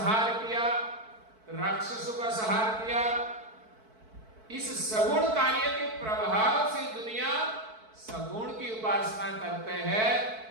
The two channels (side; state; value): left; late; 4.5 ms